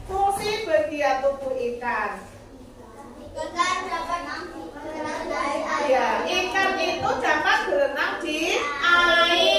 Fungsi bagian tubuh ikan. Ikan dapat berenang di air. Ya, ikan itu dapat berenang di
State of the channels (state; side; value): identical; both; correlation 1.00